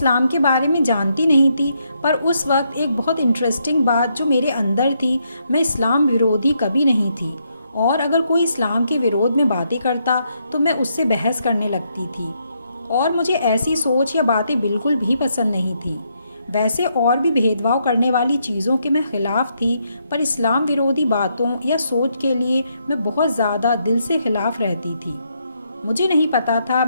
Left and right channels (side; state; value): both; inverted; correlation -0.77